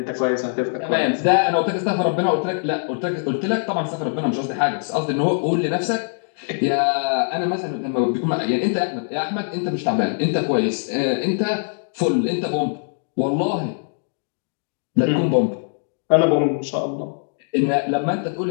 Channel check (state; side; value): silent; right; digital silence